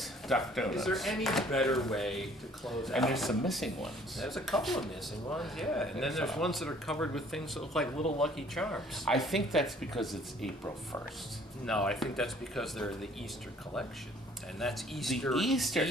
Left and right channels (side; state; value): both; normal; correlation 0.57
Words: duck donuts. Is there any better way to close out? And there's some missing ones. There's a couple of missing ones, yeah. And then there's ones that are covered with things that look like little Lucky Charms. I think that's because it's April 1st. No, I think that's because they're the Easter collection. And that's Easter The Easter